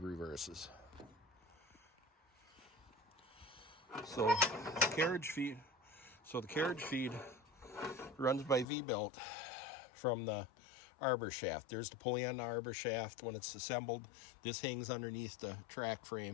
reverses. So the carriage feed runs by V-belt from the arbor shaft. There's the pulley on the arbor shaft. When it's assembled, this hangs underneath the track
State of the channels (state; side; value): drops out; right; at 8.7 s